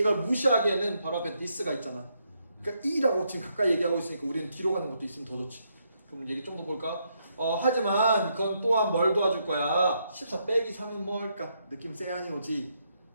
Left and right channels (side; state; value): both; inverted; correlation -0.77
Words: 무시하기에는 바로 앞에 this가 있잖아. 그러니까 E라고 지금 가까이 얘기하고 있으니까 우리는 뒤로 가는 것도 있으면 더 좋지. 그럼 얘기 좀 더 볼까? 하지만 그건 또한 뭘 도와줄 거야? 14 빼기 3은 뭐 할까? 느낌 세안이 오지.